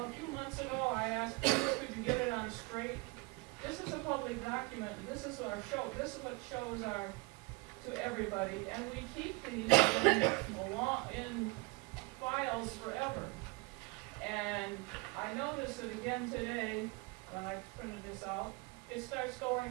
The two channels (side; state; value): left; quieter; 26.7 dB